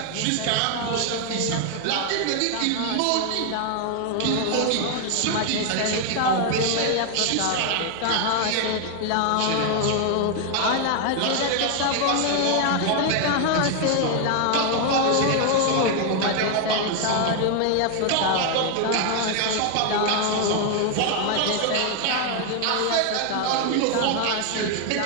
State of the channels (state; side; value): different; both; correlation 0.00